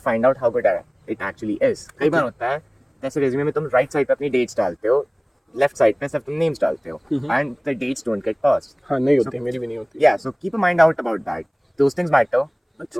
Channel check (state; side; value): identical; both; correlation 1.00